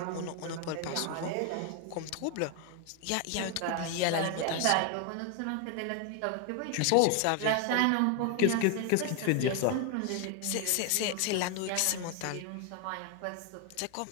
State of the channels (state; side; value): different; both; correlation 0.01